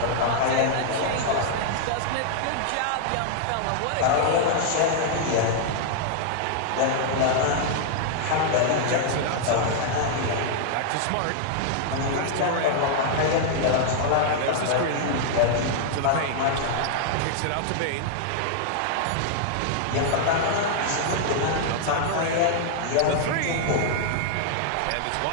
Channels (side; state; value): both; different; correlation 0.00